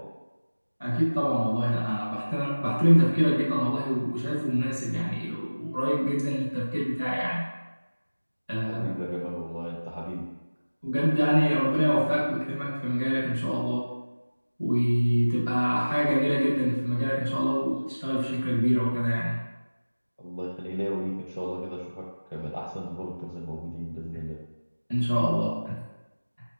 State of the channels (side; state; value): both; inverted; correlation -1.00